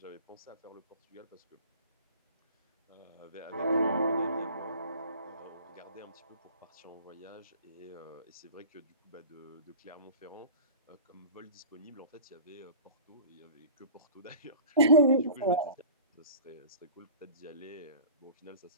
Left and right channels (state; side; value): inverted; both; correlation -0.41